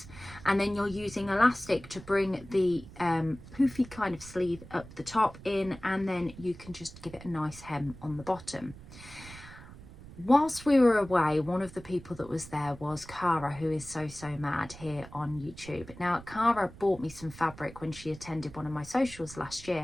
and then you're using elastic to bring the poofy kind of sleeve up the top in, and then you can just give it a nice hem on the bottom. Whilst we were away, one of the people that was there was Cara, who is so mad here on YouTube. Now Cara bought me some fabric when she attended one of my socials last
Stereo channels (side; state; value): right; noise; rumble, 17 dB below the sound